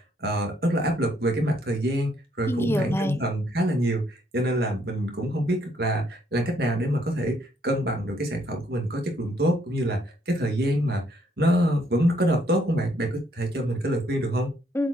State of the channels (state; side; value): normal; both; correlation 0.69